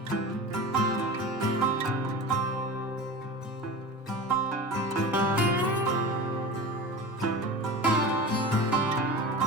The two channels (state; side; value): normal; both; correlation 0.31